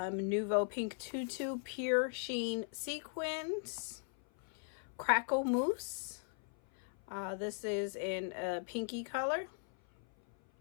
pink tutu pure sheen sequins. Crackle mousse. This is in a pinky color.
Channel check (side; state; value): right; silent; 52 dB below the other